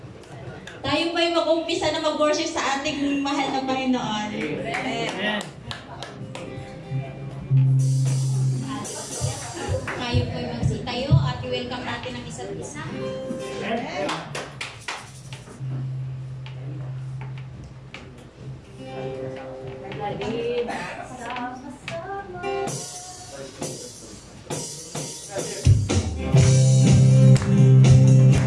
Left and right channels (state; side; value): identical; both; correlation 1.00